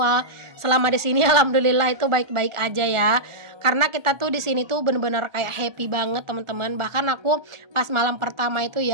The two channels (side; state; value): left; late; 1.4 ms